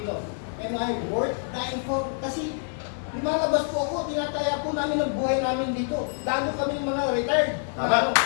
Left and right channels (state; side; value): silent; right; 61 dB below the other